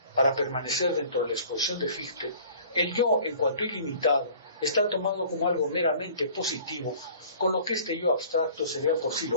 para permanecer dentro de la exposición de Fichte, el yo, en cuanto ilimitado, está tomado como algo meramente positivo, con lo que este yo abstracto sería por sí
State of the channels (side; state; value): both; inverted; correlation -0.49